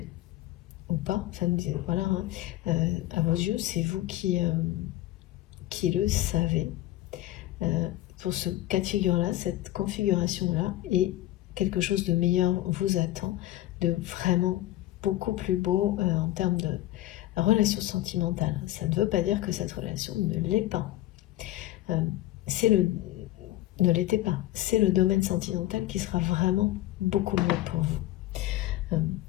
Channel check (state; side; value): quieter; right; 15.5 dB